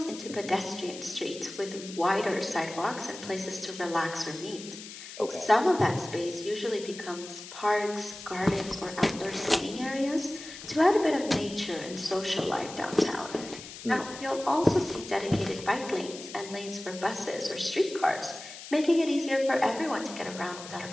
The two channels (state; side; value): noise; left; hiss, 13 dB below the sound